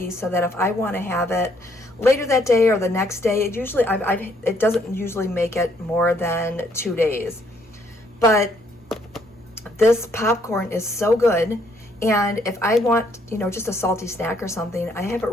so that if I want to have it later that day or the next day, it doesn't usually make it more than 2 days. But this popcorn is so good, and if I want, just a salty snack or something, I have it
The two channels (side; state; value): both; normal; correlation 0.68